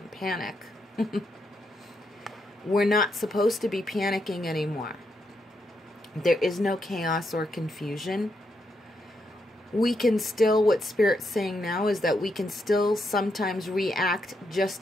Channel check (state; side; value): normal; both; correlation 0.81